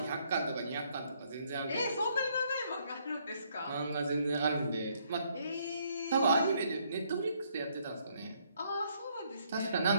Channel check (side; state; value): both; inverted; correlation -0.70